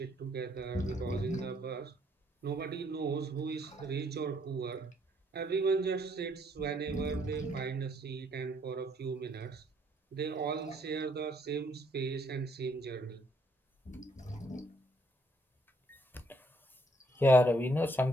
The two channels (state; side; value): normal; both; correlation 0.68